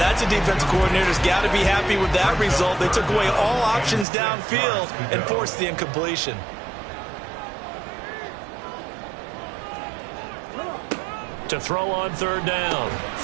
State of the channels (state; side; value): drops out; left; at 4.0 s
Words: a defensive coordinator's got to be happy with that result. They took away all options downfield and forced the incompletion. To throw on third down,